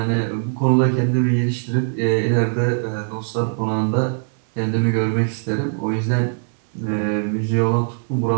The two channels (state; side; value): silent; left; digital silence